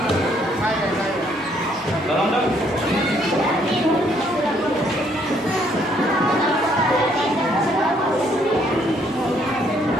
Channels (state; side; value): normal; both; correlation 0.68